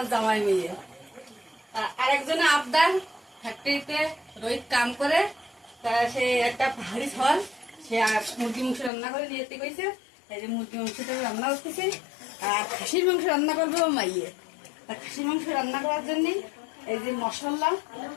জামাই মেয়ে। আরেকজনে আবদার ফ্যাক্টরিতে রোহিত কাম করে, সে একটা পাহাড়ি ফল সে মুরগি মাংস রান্না করে নিয়ে যেতে কইছে। এই যে মুরগি মাংসটা রান্না করতেছি, আর খাসির মাংস রান্না করবে ও মাইয়ে। খাসির মাংস রান্না করার জন্য এই যে মশলা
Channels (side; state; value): right; drops out; at 8.9 s